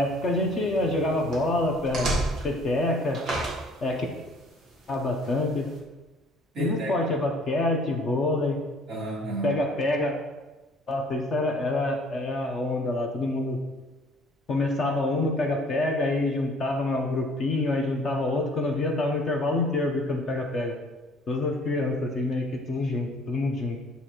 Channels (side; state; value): both; normal; correlation 0.55